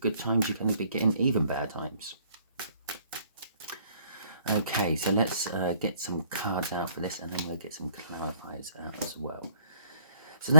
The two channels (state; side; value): inverted; both; correlation -0.62